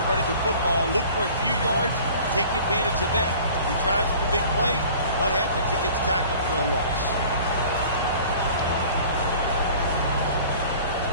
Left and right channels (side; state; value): both; inverted; correlation -0.46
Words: running the football. Look for a few yards, take advantage of that. He tries for the big play. What happens? He gets tackled for a loss.